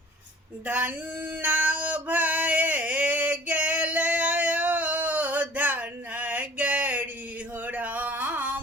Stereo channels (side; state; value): both; normal; correlation 0.49